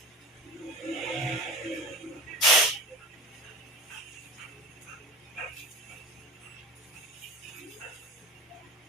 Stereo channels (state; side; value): normal; both; correlation 0.31